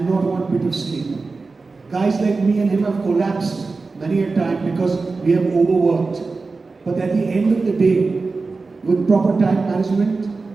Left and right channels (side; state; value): left; quieter; 4.0 dB